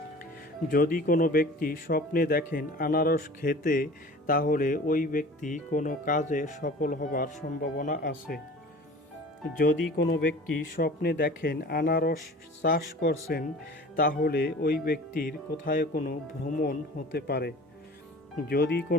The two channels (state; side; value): normal; both; correlation 0.42